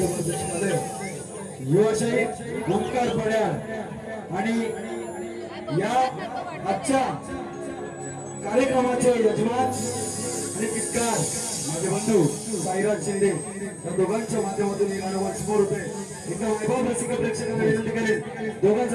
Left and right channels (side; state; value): both; identical; correlation 1.00